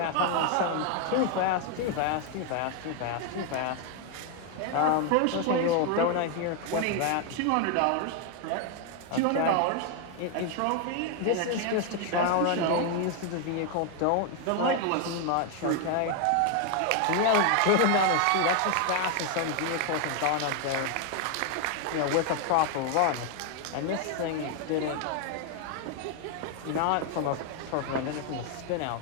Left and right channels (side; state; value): both; different; correlation 0.00